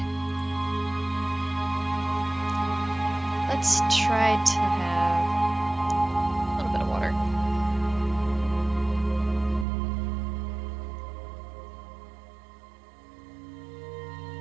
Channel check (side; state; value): left; drops out; at 9.7 s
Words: Let's try to have a little bit of water.